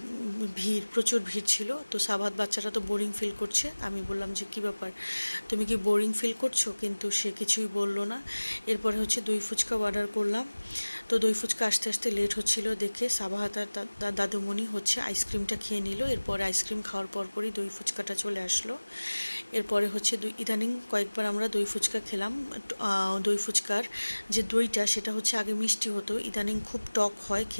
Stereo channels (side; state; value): both; inverted; correlation -1.00